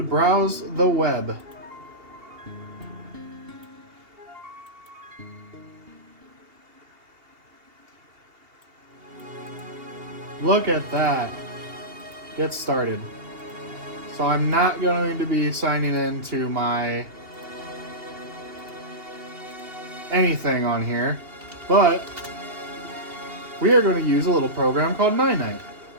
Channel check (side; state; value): left; late; 2.8 ms